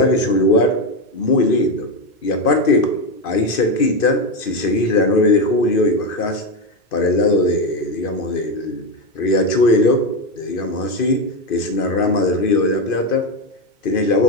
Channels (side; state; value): right; late; 2.5 ms